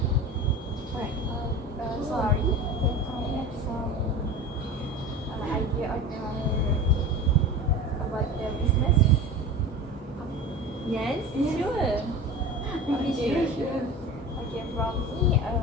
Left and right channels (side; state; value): both; normal; correlation 0.32